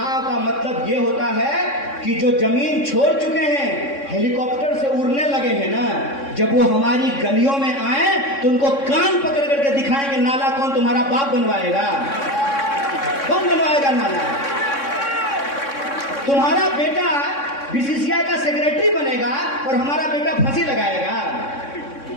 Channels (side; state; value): right; late; 3.6 ms